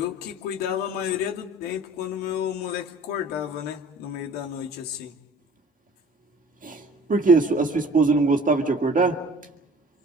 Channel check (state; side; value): normal; both; correlation 0.47